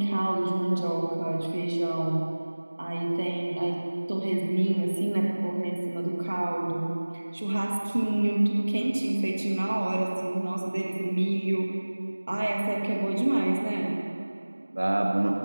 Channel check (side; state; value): both; inverted; correlation -1.00